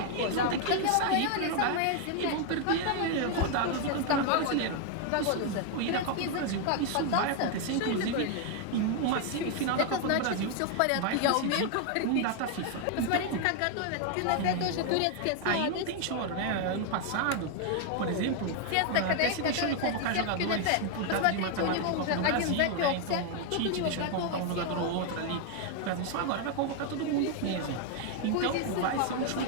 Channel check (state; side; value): different; both; correlation 0.00